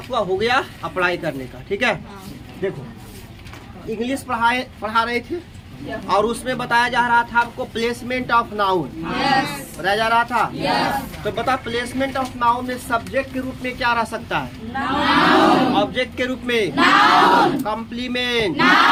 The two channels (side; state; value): both; identical; correlation 1.00